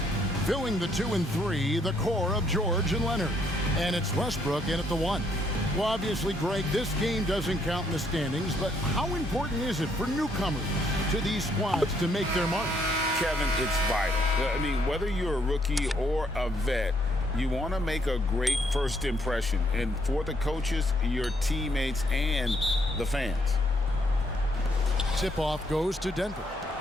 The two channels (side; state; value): both; normal; correlation 0.71